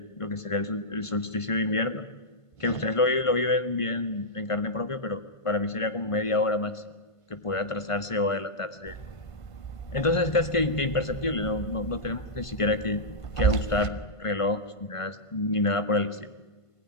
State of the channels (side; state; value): right; late; 1.5 ms